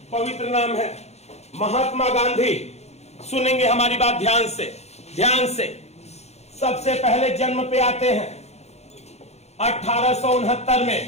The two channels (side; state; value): right; late; 0.31 ms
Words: पवित्र नाम है महात्मा गांधी। सुनेंगे हमारी बात ध्यान से, ध्यान से। सबसे पहले जन्म पे आते हैं 1869